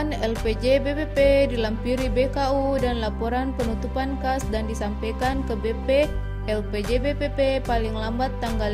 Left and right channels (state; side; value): identical; both; correlation 1.00